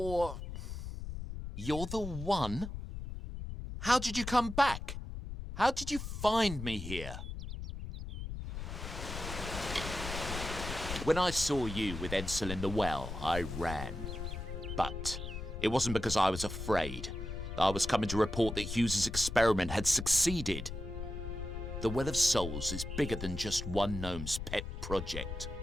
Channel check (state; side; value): noise; left; rumble, 7 dB below the sound